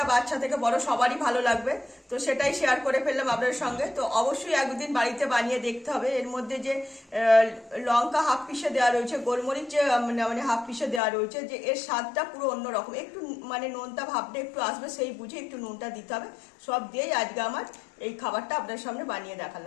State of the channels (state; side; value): drops out; right; at 11.0 s